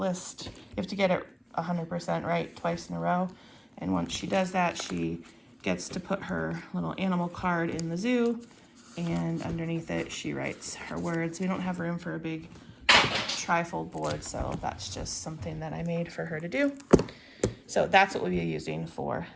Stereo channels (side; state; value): both; identical; correlation 1.00